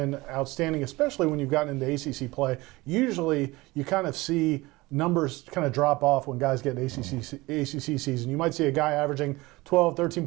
outstanding, especially when you've gotten into ACC play. Usually you kind of see numbers kind of drop off when guys get an ACC season. You might see a guy averaging 12, 13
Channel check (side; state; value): left; quieter; 21.3 dB